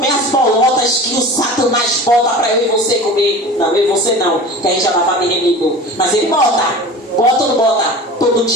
as bolotas que o Satanás bota para eu e você comer. Não, eu e você não, que a gente já estava bem remido. Mas ele bota ou não bota? Todo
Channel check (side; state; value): both; normal; correlation 0.37